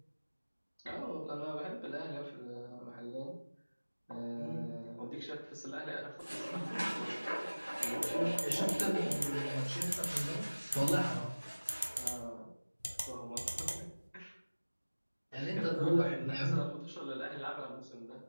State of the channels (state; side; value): inverted; both; correlation -1.00